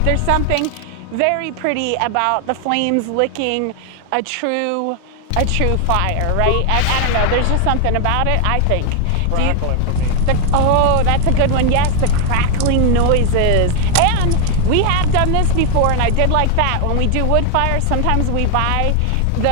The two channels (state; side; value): different; both; correlation 0.00